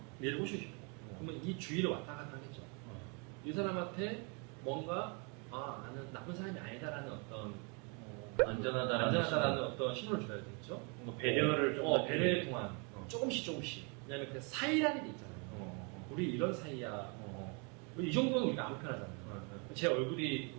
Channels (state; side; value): quieter; left; 33.9 dB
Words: 얘를 꼬시고 싶어. 그러면 이 주위를 왔다 갔다 하겠죠. 이 사람한테 뭔가 나는 나쁜 사람이 아니다라는 어떤 안전하다라는 어떤 신호를 줘야 되겠죠. 뭔가 배려를 좀 배려를 통한 조금씩. 왜냐면 그 사이라는 게 있잖아요. 우리 이런 사이야. 이 정도는 우리가 아무 편하잖아요. 제 얼굴이